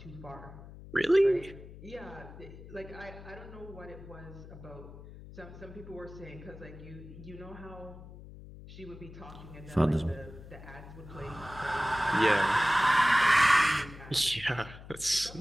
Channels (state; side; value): noise; left; hum, 16 dB below the sound